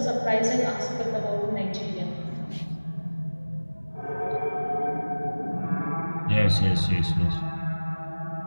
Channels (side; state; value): both; inverted; correlation -1.00